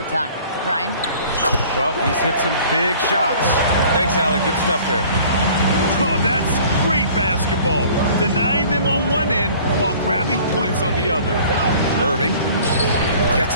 time. Ryan? Well, he's hit some big shots. Thanks, Allie. Good stuff there. Oh, that's great basketball. Denying them on one end while grabbing points on the other. Irving gets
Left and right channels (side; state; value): both; inverted; correlation -0.50